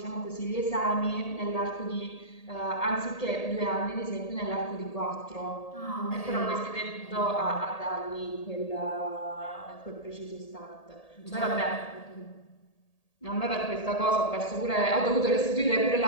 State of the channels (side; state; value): right; late; 1.8 ms